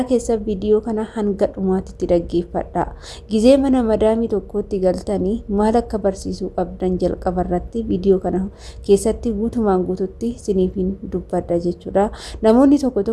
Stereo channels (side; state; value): both; identical; correlation 1.00